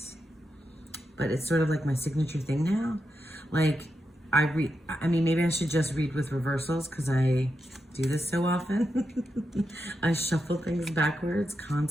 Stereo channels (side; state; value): both; normal; correlation 0.86